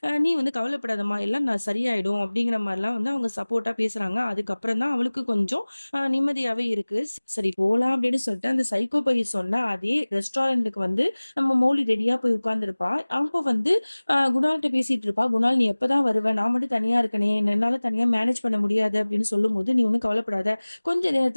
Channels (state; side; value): inverted; both; correlation -1.00